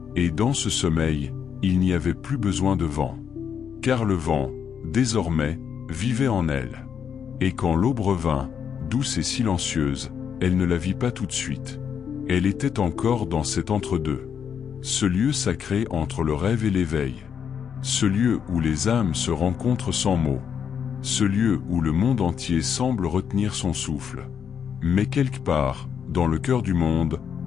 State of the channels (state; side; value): quieter; right; 7.6 dB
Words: Et dans ce sommeil, il n'y avait plus besoin de vent. Car le vent, désormais, vivait en elle. Et quand l'aube revint, douce et silencieuse, elle ne la vit pas tout de suite. Elle était encore dans cet entre-deux. Ce lieu sacré entre le rêve et l'éveil. Ce lieu où les âmes se rencontrent sans mots. Ce lieu où le monde entier semble retenir son souffle. Mais quelque part, dans le cœur du monde,